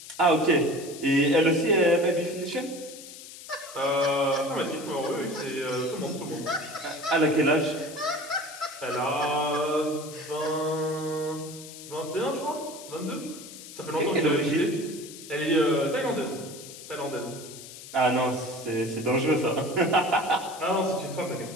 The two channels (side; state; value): left; noise; hiss, 15 dB below the sound